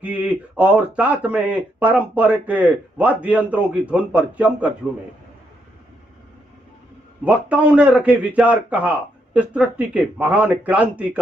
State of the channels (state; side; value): normal; both; correlation 0.78